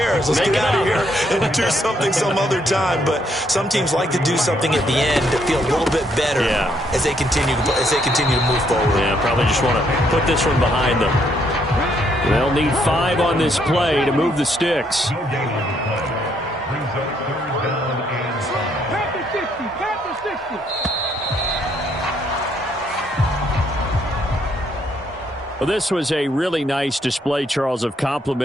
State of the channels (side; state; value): both; normal; correlation 0.71